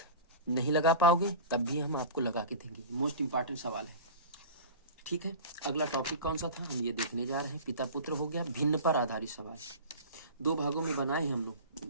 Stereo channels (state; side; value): inverted; both; correlation -0.34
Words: नहीं लगा पाओगे तब भी हम आपको लगा के देंगे। मोस्ट इंपॉर्टेंट सवाल है। ठीक है, अगला टॉपिक कौन सा था हम ये देखने जा रहे हैं। पिता पुत्र हो गया, भिन्न पर आधारित सवाल। 2 भागों में बनाए हम